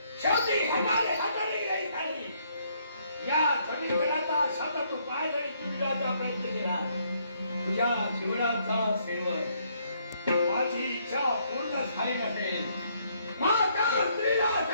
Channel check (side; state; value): both; inverted; correlation -0.70